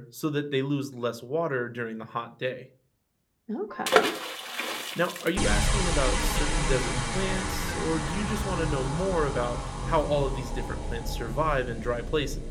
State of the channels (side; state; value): both; identical; correlation 1.00